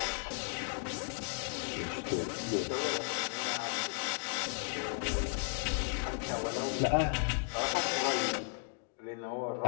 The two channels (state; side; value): silent; right; 55 dB below the other